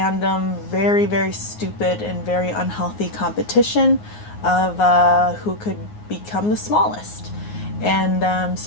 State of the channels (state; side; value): late; right; 9.6 ms